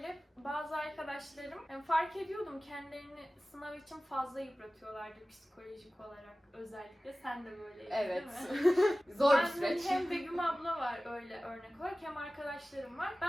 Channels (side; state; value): both; normal; correlation 0.97